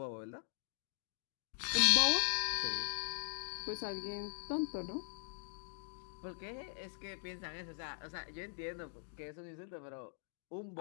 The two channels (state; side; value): silent; right; digital silence